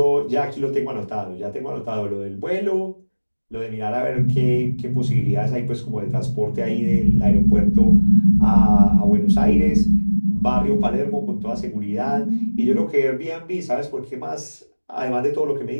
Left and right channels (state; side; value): inverted; both; correlation -1.00